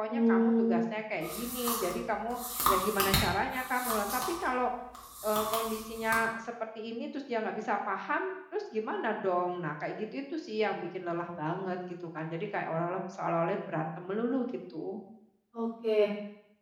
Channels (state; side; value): identical; both; correlation 1.00